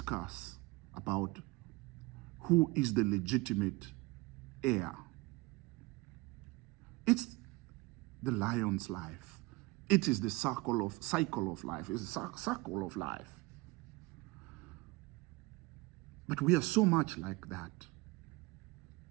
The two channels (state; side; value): quieter; left; 23.0 dB